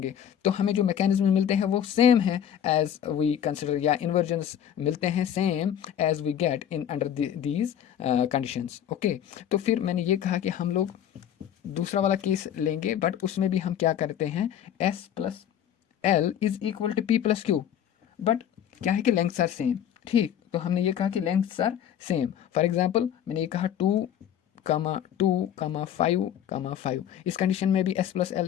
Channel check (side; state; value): right; quieter; 9.9 dB